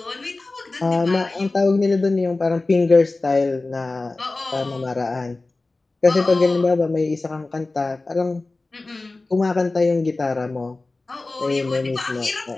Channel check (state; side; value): quieter; right; 3.3 dB